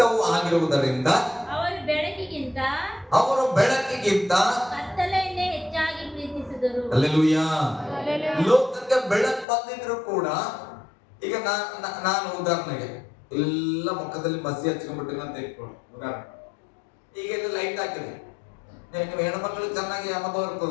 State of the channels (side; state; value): right; drops out; at 9.5 s